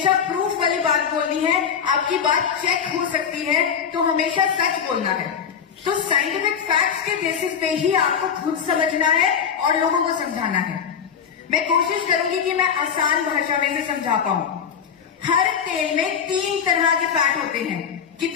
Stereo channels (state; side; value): quieter; right; 7.4 dB